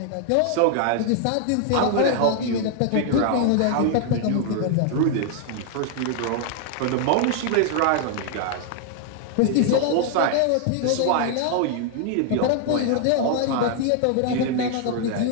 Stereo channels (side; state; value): both; different; correlation 0.00